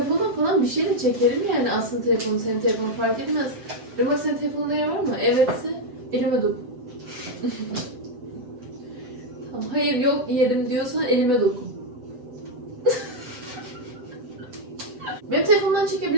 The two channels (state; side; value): late; left; 8.1 ms